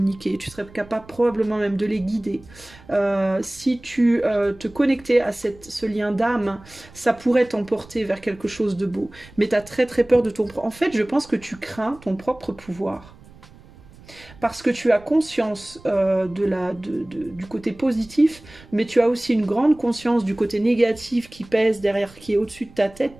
tu serais capable probablement même de les guider. Si tu te connectais à ce lien d'âme, ça pourrait t'emporter vers quelque chose de beau. Mais tu as très très peur de ton... En fait, je pense que tu crains ton propre pouvoir. Parce que tu as conscience du côté positif, mais tu as aussi une grande conscience du côté négatif qui pèse derrière, qui est au-dessus de ta tête.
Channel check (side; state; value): right; noise; rumble, 22 dB below the sound